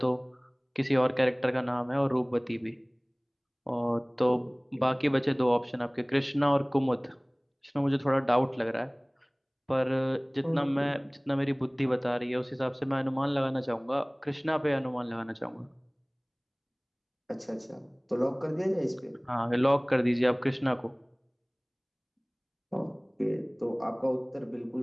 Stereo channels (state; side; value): identical; both; correlation 1.00